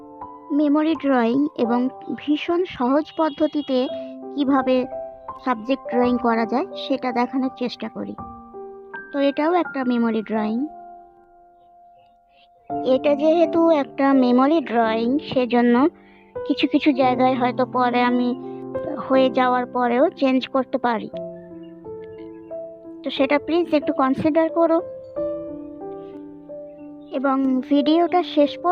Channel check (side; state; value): both; identical; correlation 1.00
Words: মেমোরি ড্রয়িং এবং ভীষণ সহজ পদ্ধতিতে কিভাবে সাবজেক্ট ড্রয়িং করা যায় সেটা দেখানোর চেষ্টা করি। তো এটাও একটা মেমোরি ড্রয়িং। এটা যেহেতু একটা মেমোরি ড্রয়িং সেজন্য কিছু কিছু জায়গায় হয়তো পরে আমি হয়ে যাওয়ার পরেও চেঞ্জ করতে পারি, তো সেটা প্লিজ একটু কনসিডার করো এবং ভিডিওটা শেষ